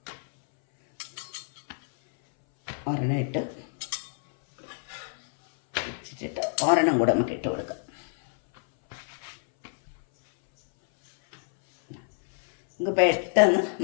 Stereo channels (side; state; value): right; silent; 60 dB below the other